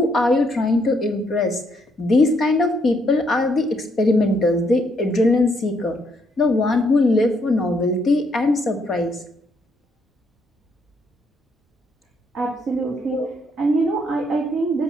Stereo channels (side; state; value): both; normal; correlation 0.73